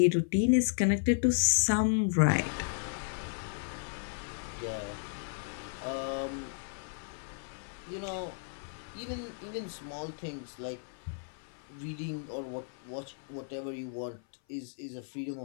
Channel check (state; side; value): silent; right; 55 dB below the other